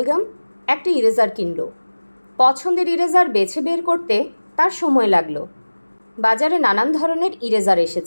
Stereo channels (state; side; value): inverted; both; correlation -1.00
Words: একটা ইরেজার কিনল। পছন্দের ইরেজার বেছে বের করতে তার সময় লাগলো। বাজারে নানান ধরনের ইরেজার